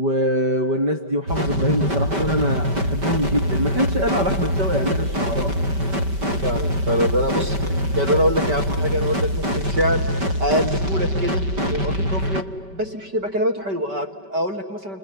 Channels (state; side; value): late; left; 5.1 ms